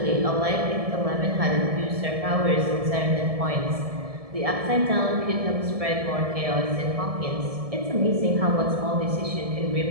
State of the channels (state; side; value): late; left; 1.7 ms